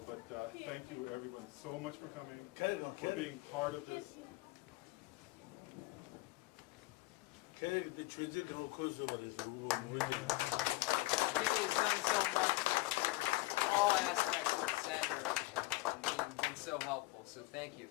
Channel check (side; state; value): right; quieter; 20.9 dB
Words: but thank you everyone so much for coming, for being part of this. the transit course over this. He has done so much for all aspects of the center and been so helpful. So thank you.